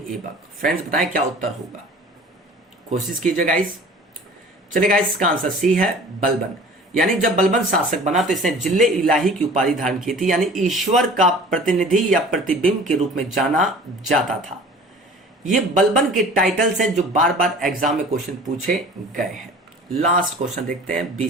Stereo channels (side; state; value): both; normal; correlation 0.44